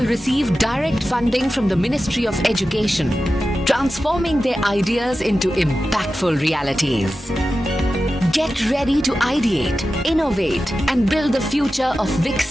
receive direct funding from the Ministry of Education, transforming their ideas into impactful realities. Get ready to ideate, innovate and build the future of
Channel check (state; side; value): normal; both; correlation 0.93